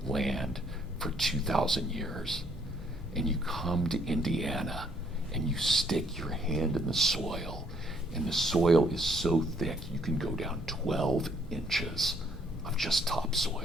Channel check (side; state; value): both; normal; correlation 0.66